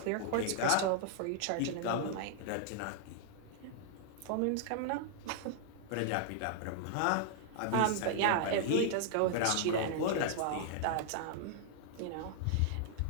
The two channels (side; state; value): both; different; correlation 0.00